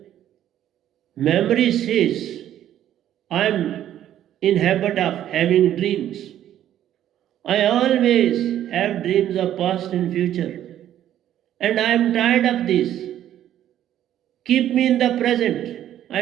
Memory says, I am in habit of having dreams. I always have dreams of past and future. And I am tired of this. Keep me in the present.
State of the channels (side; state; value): left; quieter; 11.5 dB